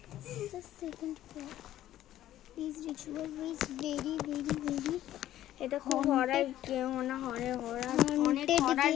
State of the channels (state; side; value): quieter; right; 13.1 dB